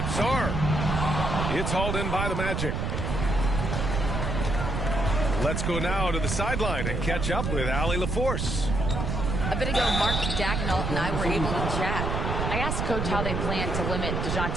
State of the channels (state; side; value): noise; right; rumble, 1 dB below the sound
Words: Sarr. It's hauled in by the Magic. Let's go now to the sideline and catch up with Allie LaForce. A bit ago, Mark Dagnall and I were able to chat. I asked Coach how they plan to limit